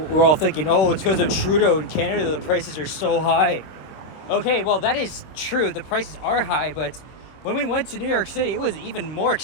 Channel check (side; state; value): right; late; 26 ms